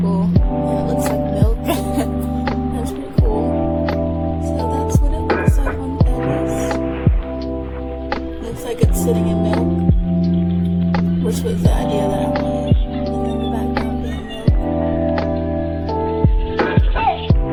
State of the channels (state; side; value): identical; both; correlation 1.00